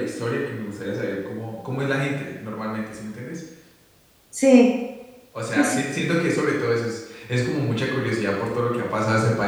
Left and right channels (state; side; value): identical; both; correlation 1.00